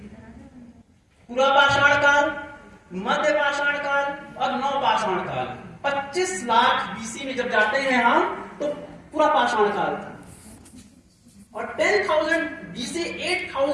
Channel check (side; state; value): both; identical; correlation 1.00